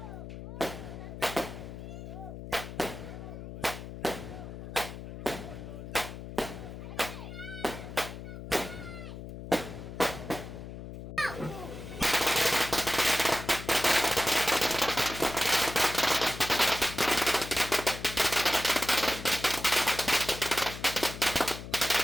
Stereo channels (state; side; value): noise; left; hum, 10 dB below the sound